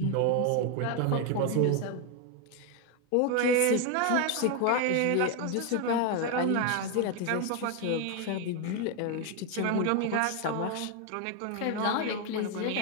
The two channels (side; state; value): both; different; correlation 0.01